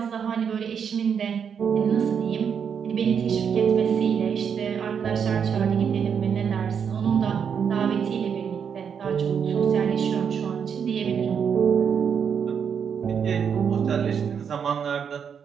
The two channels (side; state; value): left; quieter; 7.3 dB